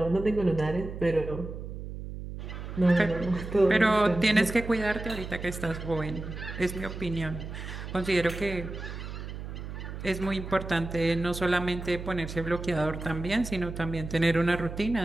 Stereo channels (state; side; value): noise; right; hum, 9 dB below the sound